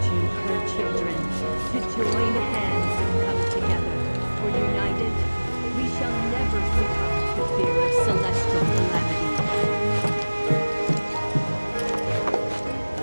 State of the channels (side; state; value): both; inverted; correlation -1.00